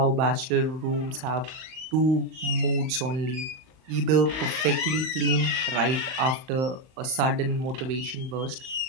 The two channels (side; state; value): left; late; 38 ms